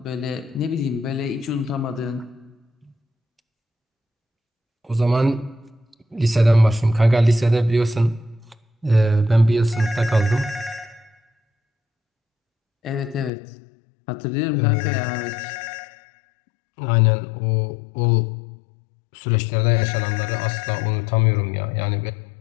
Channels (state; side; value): drops out; right; at 13.3 s